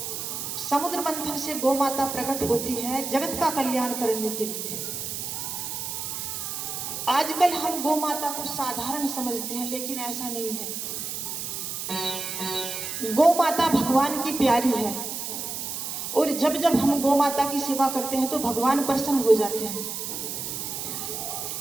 समुद्र मंथन से गौ माता प्रकट होती है जगत का कल्याण करने के लिए। आजकल हम गौ माता को साधारण समझते हैं, लेकिन ऐसा नहीं है। गौ माता भगवान की प्यारी है और जब जब हम गौ माता की सेवा करते हैं तो भगवान प्रसन्न हो जाते हैं।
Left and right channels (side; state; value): right; noise; hiss, 5 dB below the sound